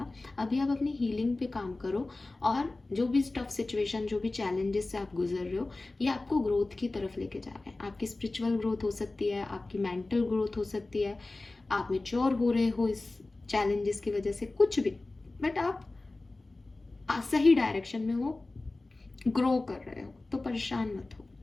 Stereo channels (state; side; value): quieter; right; 3.1 dB